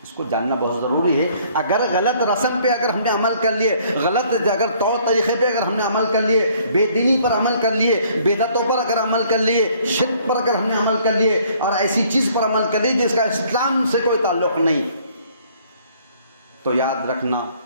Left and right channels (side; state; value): both; inverted; correlation -0.61